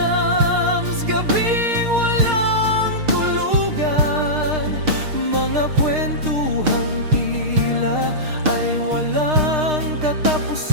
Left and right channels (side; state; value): left; late; 6.5 ms